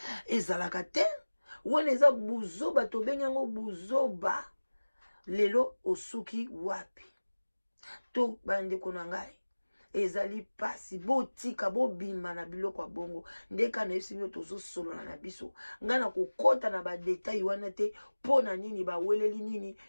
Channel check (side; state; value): both; inverted; correlation -1.00